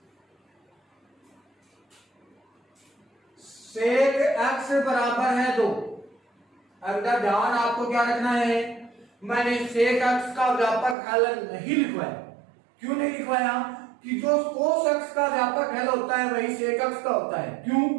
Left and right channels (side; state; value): left; drops out; at 11.0 s